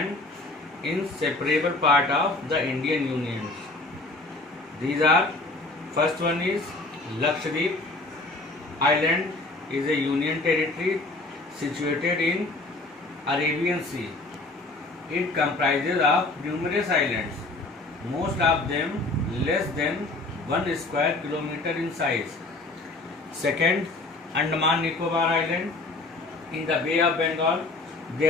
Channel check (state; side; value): quieter; right; 3.1 dB